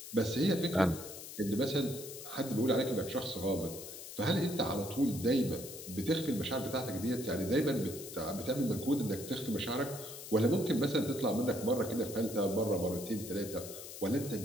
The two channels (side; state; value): left; noise; hiss, 11 dB below the sound